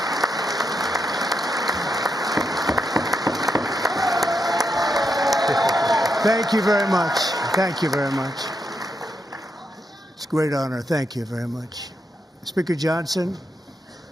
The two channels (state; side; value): normal; both; correlation 0.82